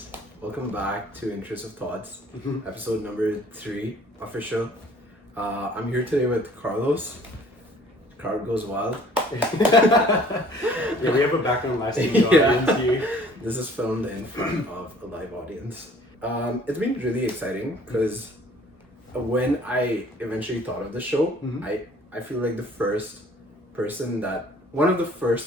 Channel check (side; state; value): both; normal; correlation 0.53